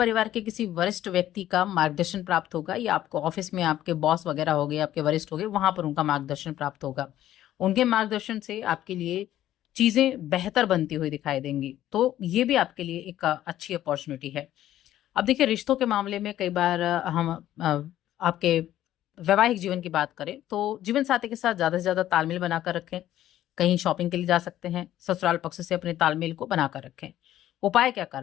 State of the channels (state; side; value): quieter; right; 12.9 dB